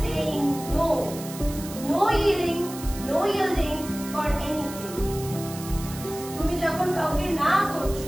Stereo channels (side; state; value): right; noise; hiss, 13 dB below the sound